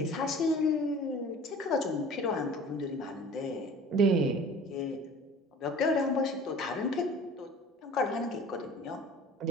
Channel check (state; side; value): normal; both; correlation 0.44